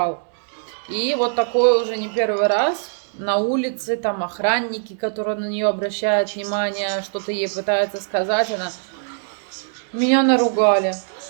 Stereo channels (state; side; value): silent; left; 64 dB below the other